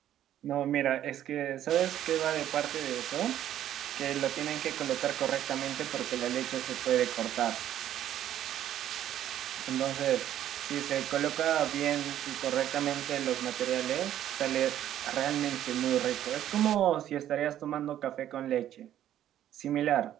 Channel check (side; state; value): left; quieter; 11.5 dB